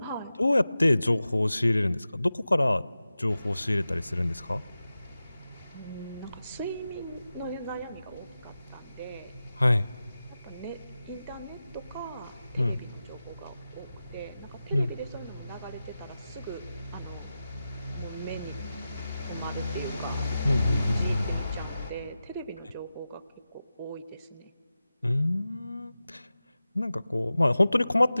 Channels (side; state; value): both; inverted; correlation -0.93